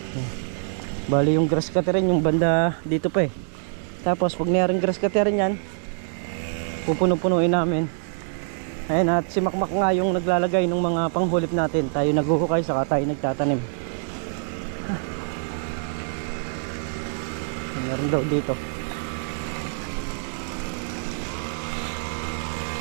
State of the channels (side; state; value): left; silent; 62 dB below the other